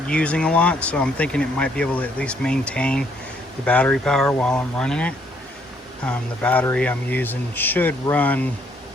using a lot, so I'm thinking it might be able to at least maintain the battery power while I'm running it. The battery I'm using should run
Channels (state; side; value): normal; both; correlation 0.68